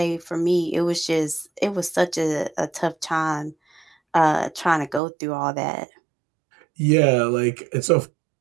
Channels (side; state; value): left; drops out; at 5.0 s